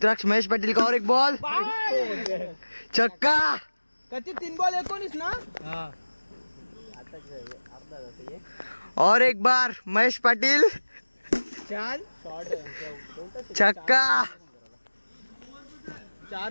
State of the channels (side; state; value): both; inverted; correlation -1.00